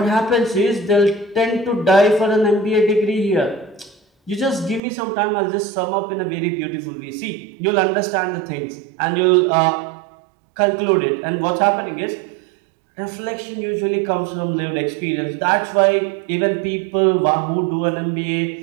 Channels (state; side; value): drops out; left; at 4.8 s